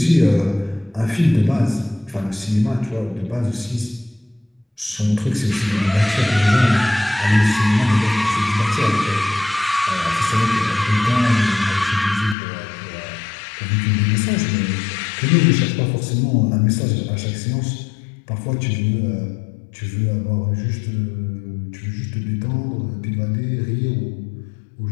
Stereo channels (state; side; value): drops out; right; at 12.4 s